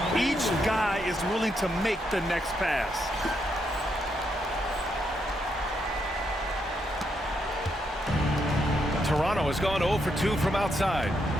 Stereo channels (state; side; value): normal; both; correlation 0.79